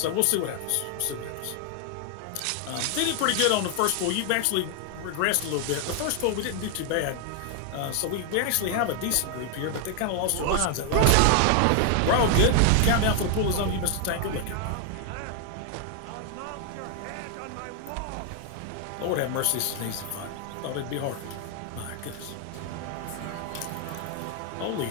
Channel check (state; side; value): different; both; correlation 0.00